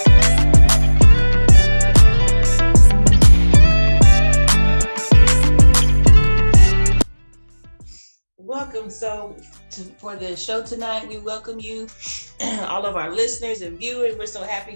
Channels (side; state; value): both; inverted; correlation -1.00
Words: For the show tonight, we welcome you, all of our listeners and viewers. We're so happy